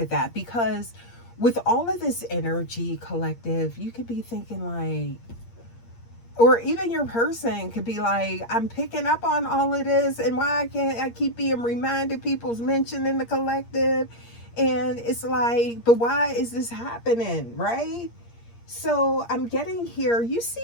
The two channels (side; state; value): right; late; 8.6 ms